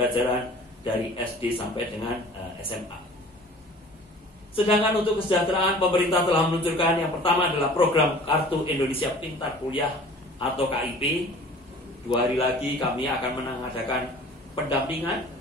dari SD sampai dengan SMA. Sedangkan untuk kesejahteraan, pemerintah telah meluncurkan yang pertama adalah program Kartu Indonesia Pintar Kuliah atau KIP. 2 hari lagi kami akan mengadakan pendampingan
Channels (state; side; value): normal; both; correlation 0.46